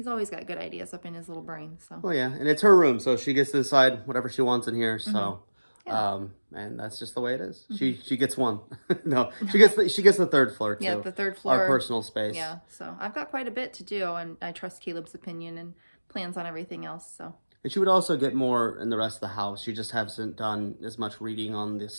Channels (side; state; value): both; inverted; correlation -1.00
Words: always got good ideas up in his little brain. So. Well, yeah, and it's her room, so she gets to decide whatever she wants in here. So. Yeah. And that's just the way it is. She gets one. No, she gets the third floor too. Yeah, the third floor. Our personal space. Yeah, so I've got quite a bit to do, and I trust Caleb's opinion and plans on everything else. So. And she would also get more in the rest of the house. She just hasn't done as much reading on the